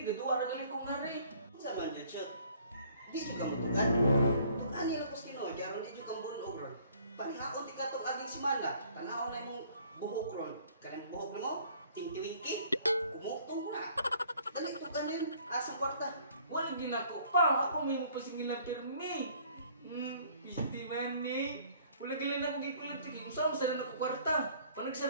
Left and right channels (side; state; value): both; inverted; correlation -0.57